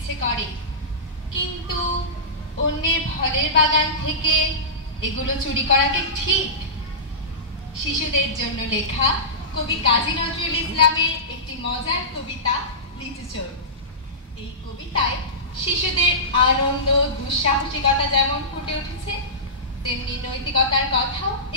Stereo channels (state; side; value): normal; both; correlation -0.19